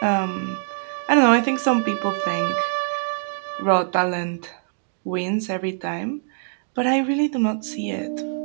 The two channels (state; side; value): silent; left; digital silence